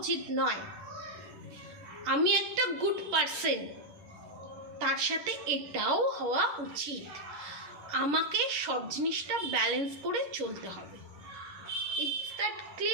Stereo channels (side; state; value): left; late; 11 ms